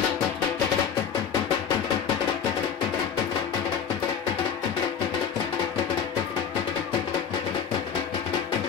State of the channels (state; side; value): quieter; right; 7.4 dB